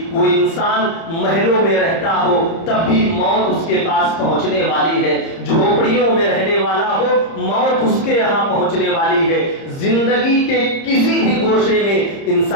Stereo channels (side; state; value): right; late; 30 ms